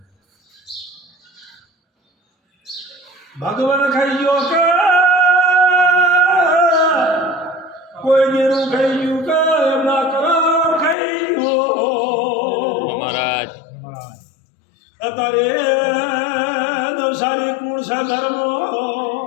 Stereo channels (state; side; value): drops out; right; at 11.0 s